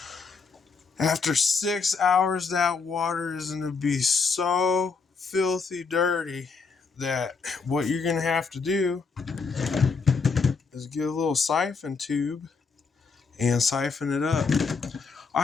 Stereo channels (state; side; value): quieter; right; 4.9 dB